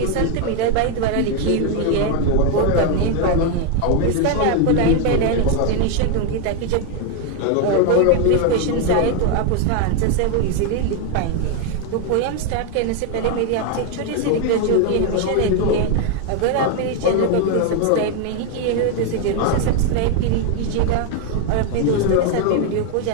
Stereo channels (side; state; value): both; different; correlation 0.01